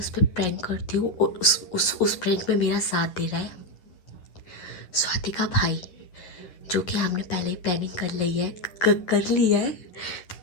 पर प्रैंक करती हूँ और उस प्रैंक में मेरा साथ दे रहा है स्वाति का भाई, जो कि हमने पहले ही प्लानिंग कर ली है कर ली है।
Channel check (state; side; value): late; right; 11 ms